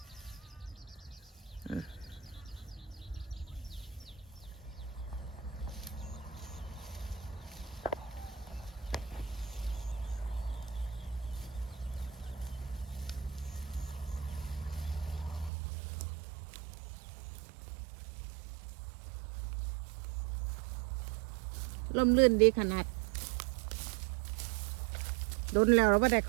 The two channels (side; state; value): left; drops out; at 15.5 s